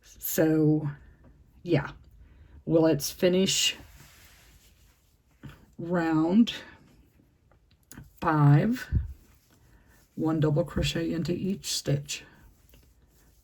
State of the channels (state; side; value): identical; both; correlation 1.00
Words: So yeah, well, let's finish round 5, 1 double crochet into each stitch,